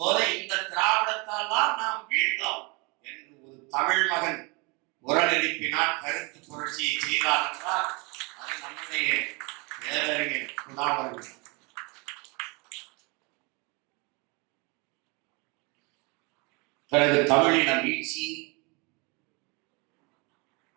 போது இந்த திராவிடத்தால் தான் நாம் வீழ்ந்தோம் என்று ஒரு தமிழ் மகன் குரல் எழுப்பினார், கருத்து புரட்சியை செய்தார் என்றால் அது நம்முடைய பேரறிஞர் குணா அவர்கள். பிறகு தமிழின வீழ்ச்சி,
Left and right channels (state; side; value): quieter; left; 29.2 dB